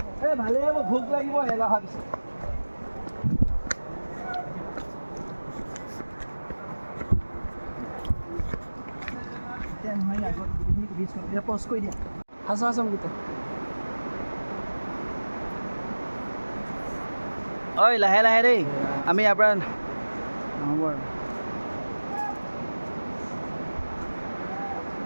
ভালেই হ'ব, ভোক লাগিব এলা অহাৰ পিছত। ব্ৰিজখন পজ কৰি দিয়া আছো গীতা ঐ লাহে লাহে দেই আমি ইয়াৰ পৰা নহ'ব আৰু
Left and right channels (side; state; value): both; inverted; correlation -1.00